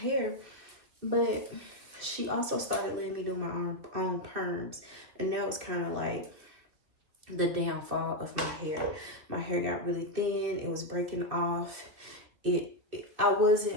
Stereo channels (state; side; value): late; left; 2.5 ms